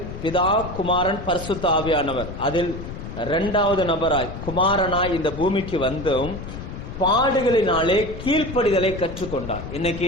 பிதா குமாரன் பரிசுத்த ஆவியானவர், அதில் இரண்டாவது நபராய் குமாரனாய் இந்த பூமிக்கு வந்தும் பாடுகளினாலே கீழ்ப்படிதலை கற்றுக்கொண்டார்.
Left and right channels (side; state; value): left; noise; rumble, 9 dB below the sound